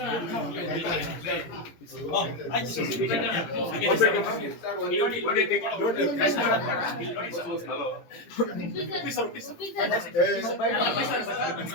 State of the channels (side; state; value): right; late; 18 ms